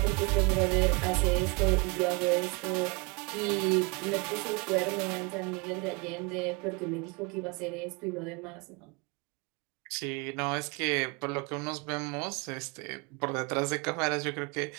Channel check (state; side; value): quieter; left; 29.0 dB